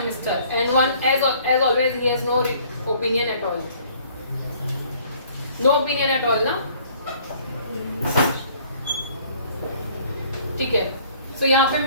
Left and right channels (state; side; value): inverted; both; correlation -0.58